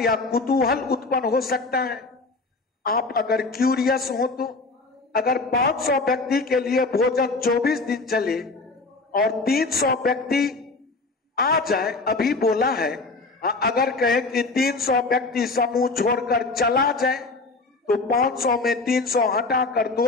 कुतूहल उत्पन्न हो सकता है। आप अगर क्यूरियस हो तो अगर 500 व्यक्ति के लिए भोजन 24 दिन चले और 300 व्यक्ति आ जाए, अभी बोला है, अगर कहे कि 300 व्यक्ति समूह छोड़कर चला जाए तो 500 में 300 हटाकर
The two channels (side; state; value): right; quieter; 3.6 dB